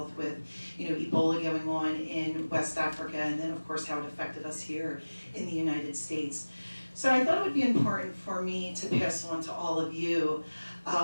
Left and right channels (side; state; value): both; inverted; correlation -1.00